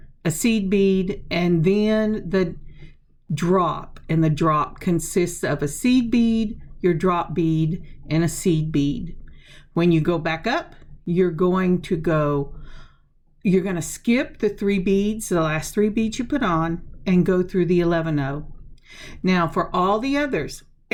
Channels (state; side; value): identical; both; correlation 1.00